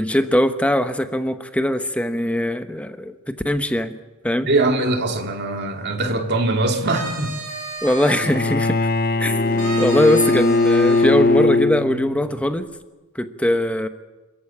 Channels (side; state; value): both; normal; correlation 0.62